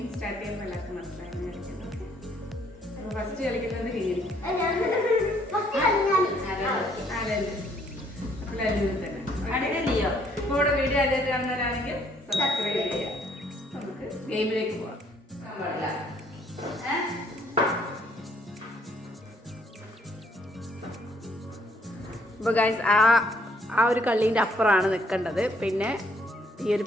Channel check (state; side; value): normal; both; correlation 0.66